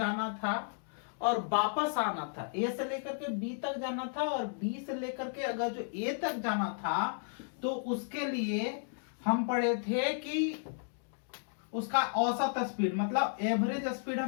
था और वापस आना था। ए से लेकर के बी तक जाना था और बी से लेकर के अगर जो ए तक जाना था तो उसके लिए हम पढ़े थे कि उसका औसत स्पीड मतलब एवरेज स्पीड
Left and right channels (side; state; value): right; silent; digital silence